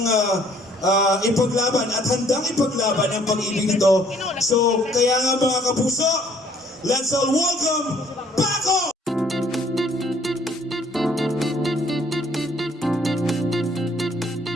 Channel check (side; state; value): both; normal; correlation 0.61